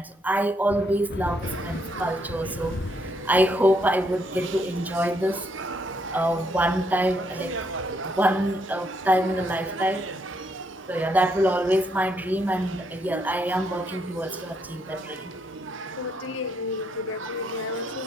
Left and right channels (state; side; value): normal; both; correlation 0.74